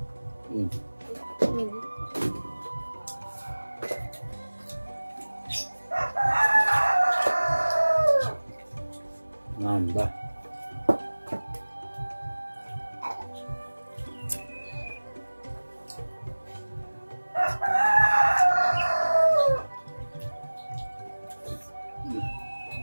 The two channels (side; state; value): both; inverted; correlation -1.00